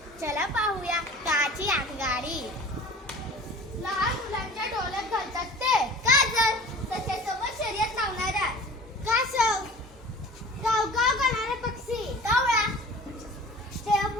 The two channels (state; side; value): normal; both; correlation 0.42